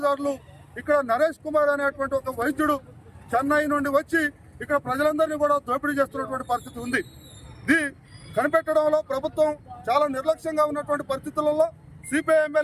ఇక్కడ నరేష్ కుమార్ అనేటువంటి ఒక వైద్యుడు చెన్నై నుండి వచ్చి ఇక్కడ ప్రజలందరినీ కూడా దోపిడీ చేస్తున్నటువంటి పరిస్థితి ఉంది. ఇది కనిపెట్టడంలో ప్రభుత్వం చాలా నిర్లక్ష్యంగా ఉన్నటువంటి పరిస్థితులలో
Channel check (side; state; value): both; identical; correlation 1.00